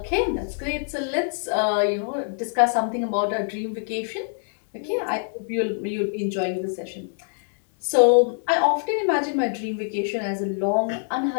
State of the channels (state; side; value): silent; right; digital silence